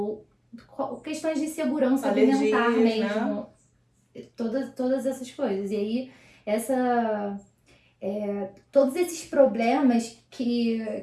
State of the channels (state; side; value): identical; both; correlation 1.00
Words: questões de segurança alimentar mesmo, né? Todas essas coisas. E aí, todos esses problemas que